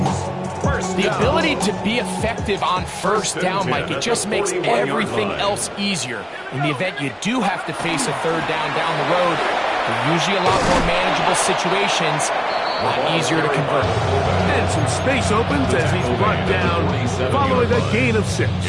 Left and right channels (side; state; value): both; identical; correlation 1.00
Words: The ability to be effective on 1st down, Mike, it just makes everything else easier. In the event you do have to face a 3rd down the road, they're usually a lot more manageable situations. A lot easier to convert. And some space opens as he's brought down following a gain of 6.